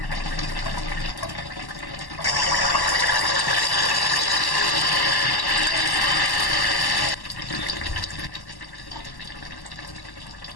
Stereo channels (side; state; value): right; late; 1.1 ms